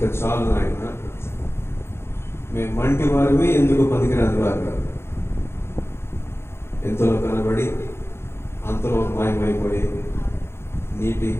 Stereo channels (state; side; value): late; right; 0.12 ms